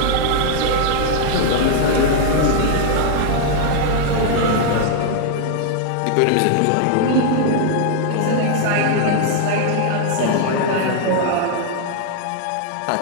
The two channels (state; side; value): different; both; correlation -0.01